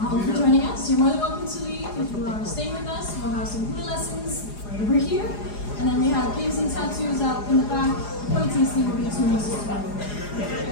for joining us. You're more than welcome to leave. If you are staying with us, we'll have some hula lessons right over here. And then we have games and tattoos out in the back. Point tasting will be 2 months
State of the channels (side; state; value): right; late; 4.9 ms